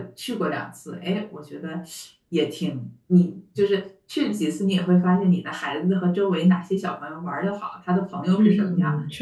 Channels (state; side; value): identical; both; correlation 1.00